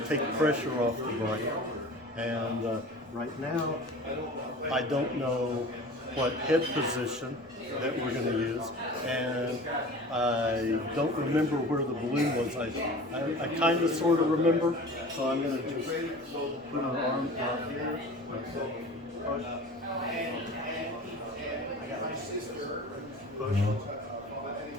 take pressure off the brain. And right now, I don't know what head position that we're going to use, and I don't remember where the balloon was. I kind of sort of remember, so I'm going to just put an arm out here. Push. Push.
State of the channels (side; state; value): both; normal; correlation 0.40